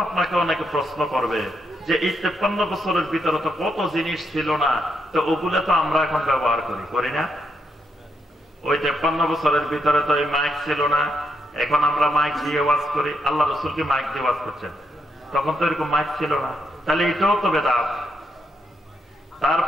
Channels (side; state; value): both; normal; correlation 0.80